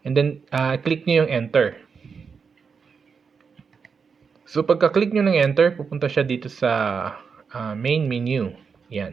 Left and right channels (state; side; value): quieter; left; 5.7 dB